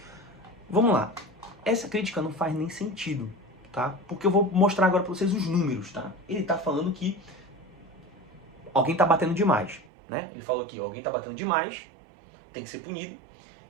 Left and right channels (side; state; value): left; drops out; at 9.9 s